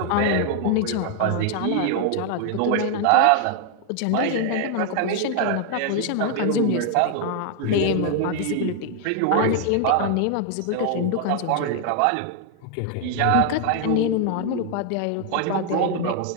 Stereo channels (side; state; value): both; different; correlation 0.00